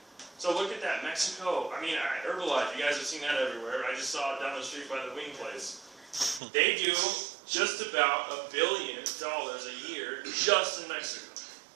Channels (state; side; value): drops out; left; at 6.4 s